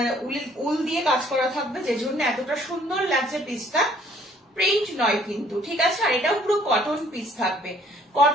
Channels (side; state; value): both; normal; correlation 0.61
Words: উল দিয়ে কাজ করা থাকবে, যে জন্য এতটা সুন্দর লাগছে পিসটা, প্রিন্ট নয় কিন্তু, ঠিক আছে? আর এটাও পুরো কটন পিস থাকবে,